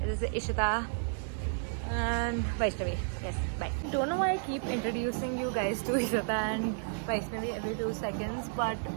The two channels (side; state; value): left; silent; digital silence